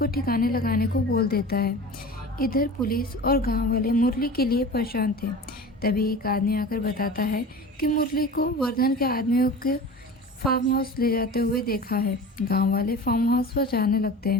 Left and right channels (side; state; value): both; normal; correlation 0.35